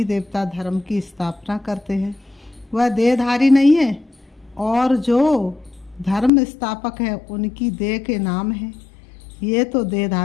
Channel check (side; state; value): right; drops out; at 6.3 s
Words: देवता धर्म की स्थापना करते हैं। वह देहधारी नहीं है, और जो धर्म स्थापक है उनकी देह के नाम है। ये तो